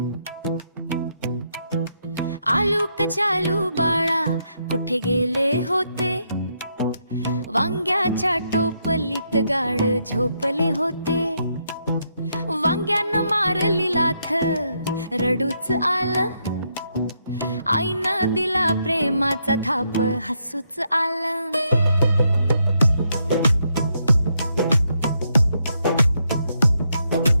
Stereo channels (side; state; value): both; inverted; correlation -0.78